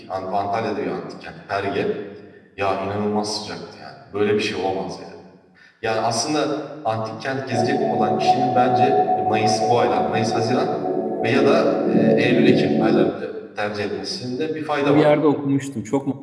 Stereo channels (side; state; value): both; identical; correlation 1.00